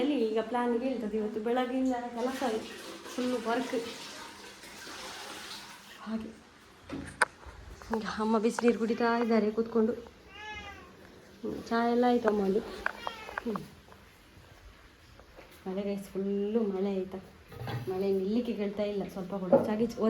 ಈಗ ಪ್ಲಾನ್ಗೆ ಹೇಳ್ತದೆ. ಇವತ್ತು ಬೆಳಗ್ಗಿಂದ ಕೆಲಸ ಫುಲ್ಲು ವರ್ಕ್. ಹಾಗೆ ಈಗ ಅಮ್ಮ ಬಿಸಿನೀರು ಕುಡಿತಾ ಇದ್ದಾರೆ ಕೂತ್ಕೊಂಡು. ಚಹಾ ಎಲ್ಲ ಆಯಿತು ಅಮ್ಮಲ್ಲಿ. ಮಳೆ ಗೈಸ್, ಫುಲ್ಲು ಮಳೆ ಆಯಿತಾ. ಮಳೆ ನಿಲ್ಲಿಕ್ಕೆ ಕೇಳ್ತಾ ಇಲ್ಲ ಸ್ವಲ್ಪ ಕೂಡ.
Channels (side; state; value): both; identical; correlation 1.00